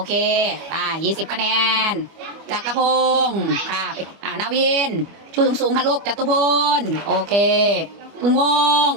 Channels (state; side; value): late; left; 25 ms